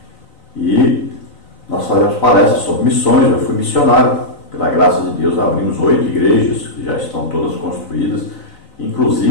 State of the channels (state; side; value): late; right; 4.0 ms